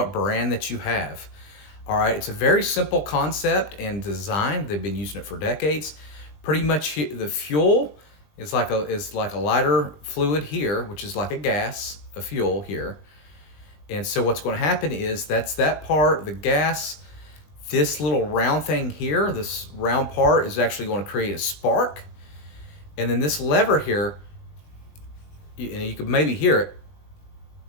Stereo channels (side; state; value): right; late; 20 ms